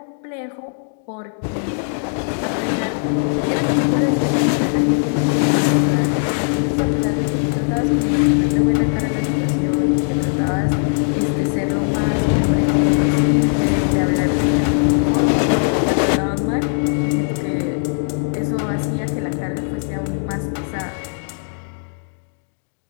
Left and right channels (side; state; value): right; silent; digital silence